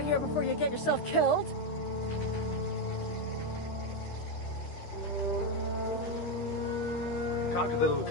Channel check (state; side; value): late; right; 13 ms